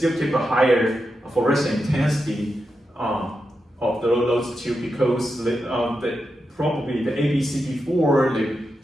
keep a higher fluorescent intensity of those two because probably the ABCB4 they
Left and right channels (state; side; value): normal; both; correlation 0.88